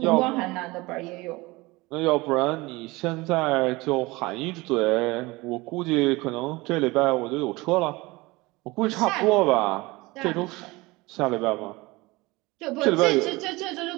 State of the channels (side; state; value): left; quieter; 22.3 dB